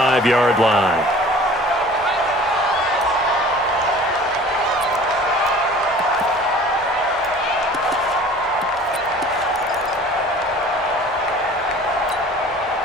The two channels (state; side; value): normal; both; correlation 0.46